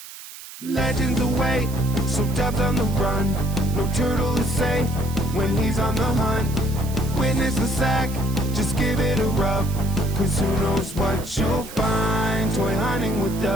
Legends await, so Dub's on the run. No turtle is safe when he's on the hunt. Witness the sack, just give it a rub. Cause who knows what you'll find. Toy hunting with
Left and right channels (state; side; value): noise; right; hiss, 15 dB below the sound